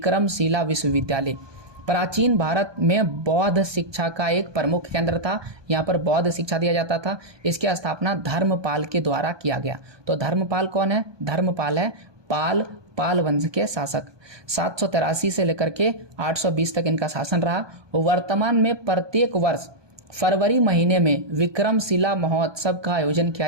विश्वविद्यालय। प्राचीन भारत में बौद्ध शिक्षा का एक प्रमुख केंद्र था। यहाँ पर बौद्ध शिक्षा दिया जाता था। इसकी स्थापना धर्मपाल के द्वारा किया गया। तो धर्मपाल कौन है? धर्मपाल है पाल वंश के शासक। 783 से लेकर के 820 तक इनका शासन रहा। वर्तमान में प्रत्येक वर्ष फरवरी महीने में विक्रमशिला महोत्सव का आयोजन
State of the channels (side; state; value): left; late; 1.2 ms